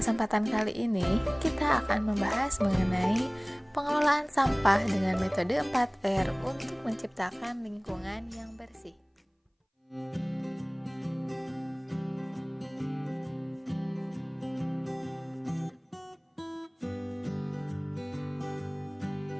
kali ini, kita akan membahas mengenai pengelolaan sampah dengan metode 4R untuk menciptakan lingkungan yang bersih.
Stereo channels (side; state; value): both; identical; correlation 1.00